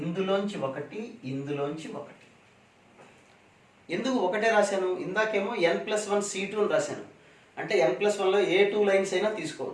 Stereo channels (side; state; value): both; identical; correlation 1.00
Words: ఇందులోంచి ఒకటి, ఇందులోంచి ఒకటి. ఎందుకు ఒకటే రాశాను, ఇందాకేమో n+1 C2 అని రాశాను, అంటే n+1లో ఏ 2 లైన్స్ అయినా